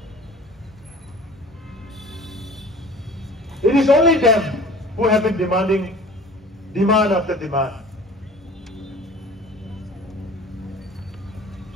It is only them who have been demanding demand after demand.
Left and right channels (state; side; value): normal; both; correlation 0.45